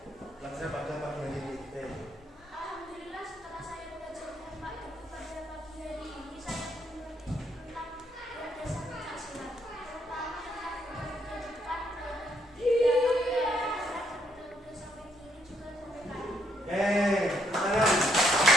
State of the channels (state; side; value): normal; both; correlation 0.73